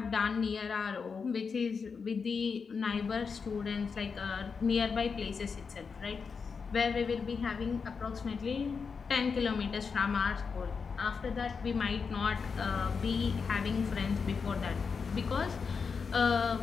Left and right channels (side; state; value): right; quieter; 5.5 dB